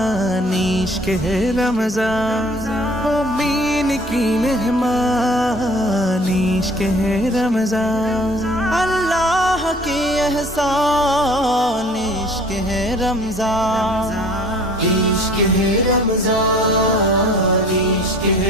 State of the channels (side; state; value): both; normal; correlation 0.51